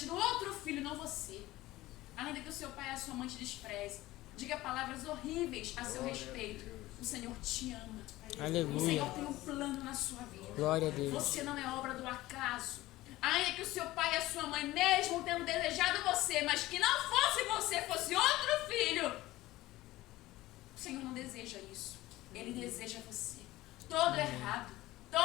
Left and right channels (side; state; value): right; quieter; 17.4 dB